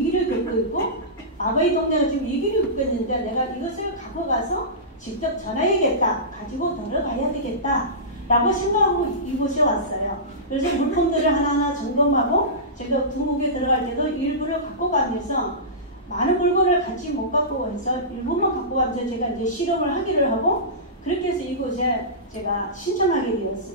겪고 있고 아바이 동네가 지금 위기를 겪고 있는데 내가 이것을 갖고 가서 직접 전해야겠다. 가지고 들어가야 되겠다. 라고 생각하고 이곳에 왔어요. 그래서 물품들을 하나하나 점검하고 제가 중국에 들어갈 때도 일부를 갖고 가면서 많은 물건을 같이 못 갖고 와서 일부만 갖고 가면서 제가 이제 실험을 하기를 하고 그렇게 해서 이곳에 제가 신청하게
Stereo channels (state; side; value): normal; both; correlation -0.20